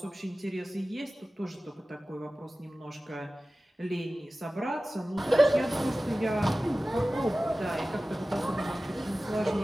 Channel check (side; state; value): both; normal; correlation 0.96